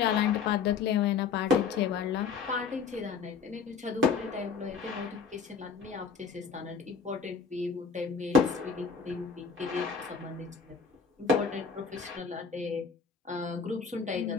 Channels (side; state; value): right; quieter; 5.6 dB